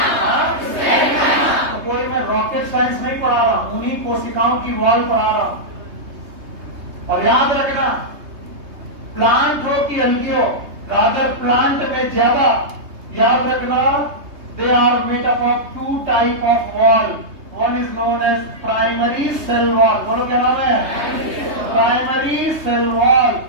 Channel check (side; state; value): left; late; 3.2 ms